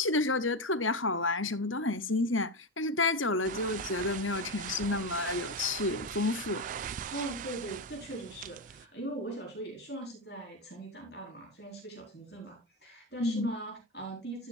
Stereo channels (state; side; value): normal; both; correlation 0.13